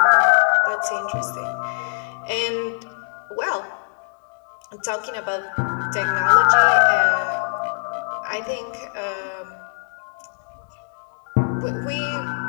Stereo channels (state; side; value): silent; right; digital silence